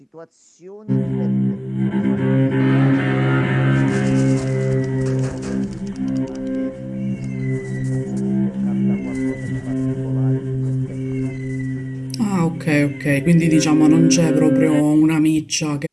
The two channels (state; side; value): identical; both; correlation 1.00